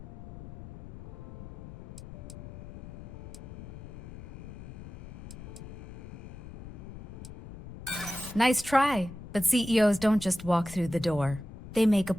Nice try, but CEOs don't just walk through the door. They make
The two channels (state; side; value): noise; left; rumble, 12 dB below the sound